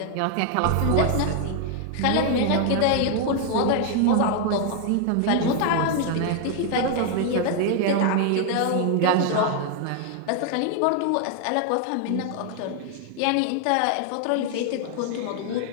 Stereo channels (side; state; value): both; different; correlation 0.00